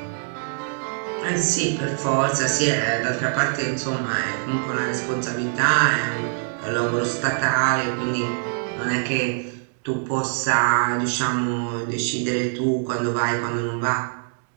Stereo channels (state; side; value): silent; left; digital silence